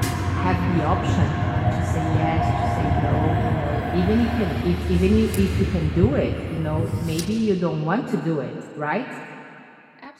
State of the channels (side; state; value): both; identical; correlation 1.00